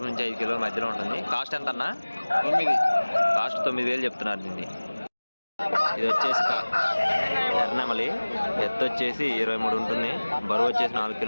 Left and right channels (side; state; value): both; inverted; correlation -1.00